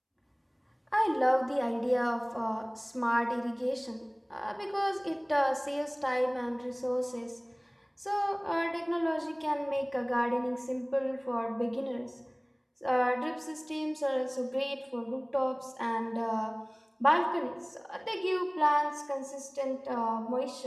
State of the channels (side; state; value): both; identical; correlation 1.00